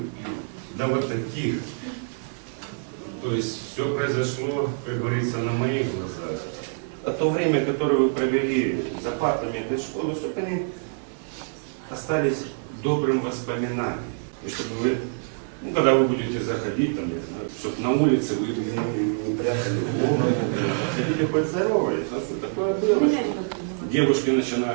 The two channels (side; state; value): left; silent; 61 dB below the other